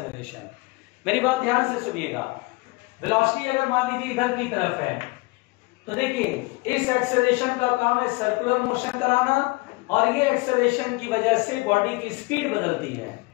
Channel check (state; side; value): quieter; right; 24.9 dB